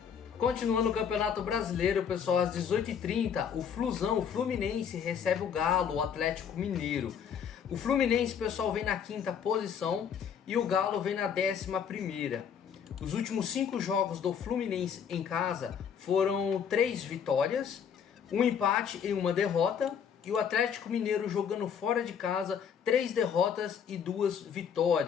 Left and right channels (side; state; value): right; quieter; 7.6 dB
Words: Continuando o Campeonato Brasileiro, pessoal, às 18h30, o Flusão, o Fluminense, recebe o Galo, o Atlético Mineiro. O Fluminense, pessoal, vem na 5ª posição e o Galo vem na 11ª. Os últimos 5 jogos do Fluminense em casa foram 3 vitórias, 1 empate e 1 derrota. E o Atlético Mineiro jogando fora de casa, 3 derrotas e 2